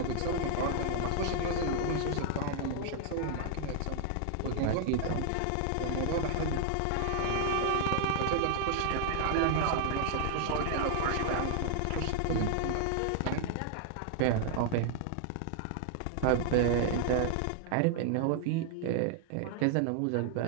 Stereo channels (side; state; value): both; different; correlation -0.01